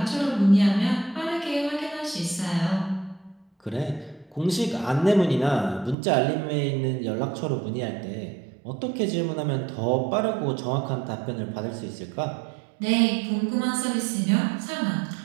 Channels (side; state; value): left; drops out; at 6.0 s